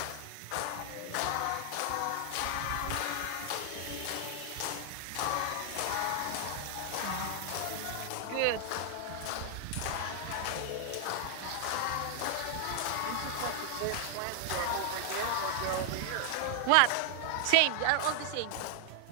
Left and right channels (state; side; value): different; both; correlation 0.00